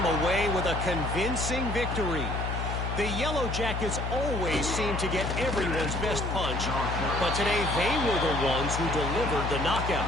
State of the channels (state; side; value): noise; left; hum, 3 dB below the sound